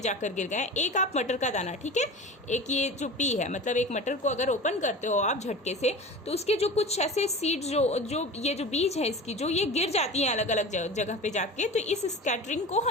जाकर गिर गए। एक आप मटर का दाना, ठीक है, एक ये जो पी है, मतलब एक मटर को अगर ओपन करते हो आप झटके से तो उसके जो कुछ ऐसे सीड जो ये जो बीज है इसकी, जो ये गिर जाती हैं अलग अलग जगह पे जाके, तो इस स्कैटरिंग को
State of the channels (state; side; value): normal; both; correlation 0.34